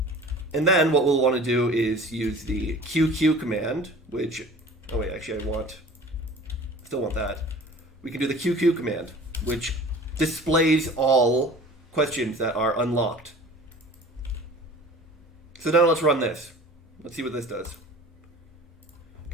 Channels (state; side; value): normal; both; correlation 0.43